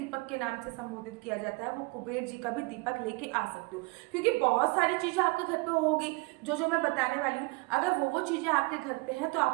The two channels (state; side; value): quieter; left; 26.4 dB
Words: के नाम से संबोधित किया जाता है, वो कुबेर जी का भी दीपक लेके आ सकते हो, क्योंकि बहुत सारी चीजें आपके घर पे होगी जो मैं बताने वाली हूँ। अगर वो चीजें आपके घर पे हैं तो